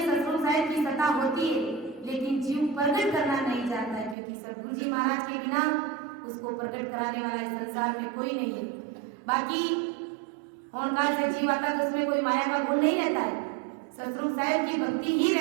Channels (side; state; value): left; drops out; at 4.2 s